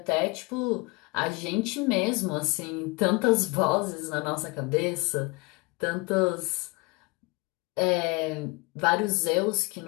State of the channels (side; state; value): right; quieter; 26.8 dB